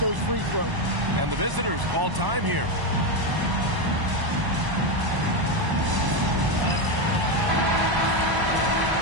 free throws. And the visitors call time here.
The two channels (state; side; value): late; left; 1.0 ms